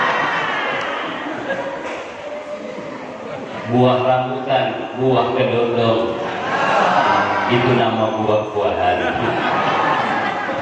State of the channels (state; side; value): identical; both; correlation 1.00